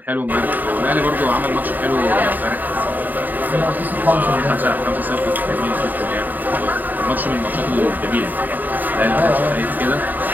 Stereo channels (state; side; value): late; left; 0.086 ms